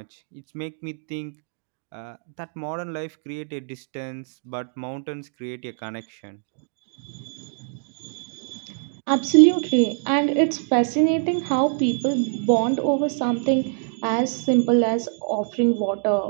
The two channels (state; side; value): silent; left; digital silence